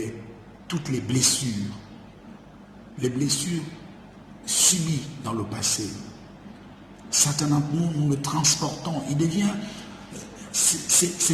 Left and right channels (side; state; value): both; identical; correlation 1.00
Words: toutes les blessures subies dans le passé. Certains d'entre nous le transportons. Il devient,